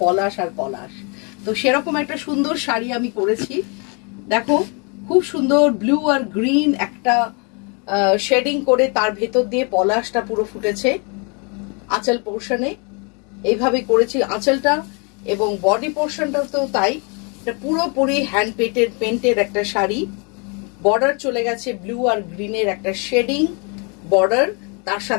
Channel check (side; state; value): right; quieter; 34.2 dB